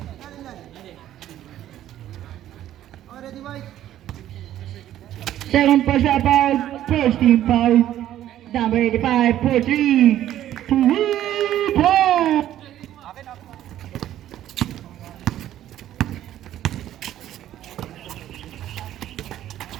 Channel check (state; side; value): quieter; left; 12.3 dB